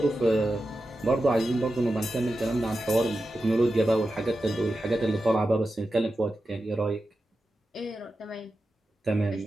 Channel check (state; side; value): normal; both; correlation 0.91